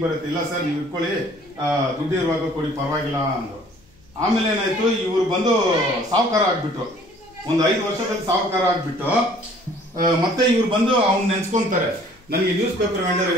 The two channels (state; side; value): noise; left; hum, 30 dB below the sound